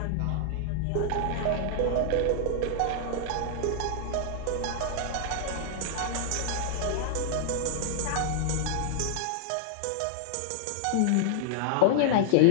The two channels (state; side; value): different; both; correlation -0.01